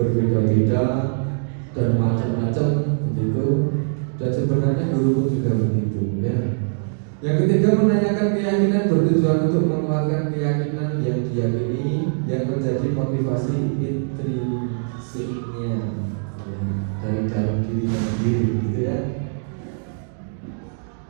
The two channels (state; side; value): silent; left; digital silence